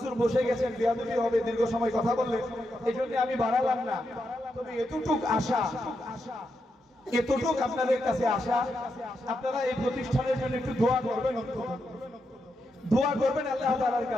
বসে গেছেন, বেয়াদবি হবে দীর্ঘ সময় কথা বললে, এই জন্য আমি বাড়ালাম না। তবে এতটুক আশা, এতটুক আপনাদের কাছে আশা, আপনারা এই প্রতিষ্ঠানের জন্য একটু দোয়া করবেন, দোয়া করবেন আল্লাহ তাআলার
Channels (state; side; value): normal; both; correlation 0.84